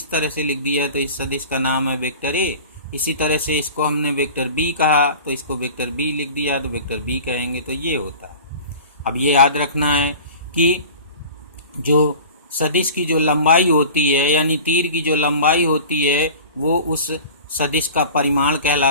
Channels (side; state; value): both; inverted; correlation -0.40